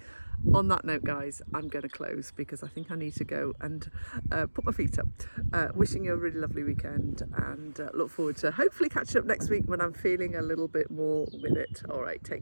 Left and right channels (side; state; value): both; inverted; correlation -1.00